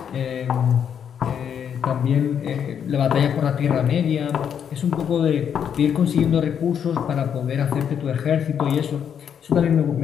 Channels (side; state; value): right; quieter; 8.2 dB